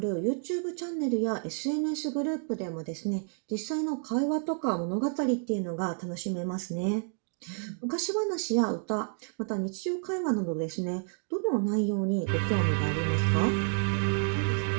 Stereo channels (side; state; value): left; silent; 58 dB below the other